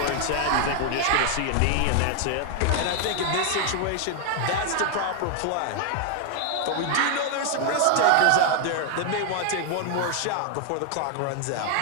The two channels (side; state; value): both; different; correlation 0.00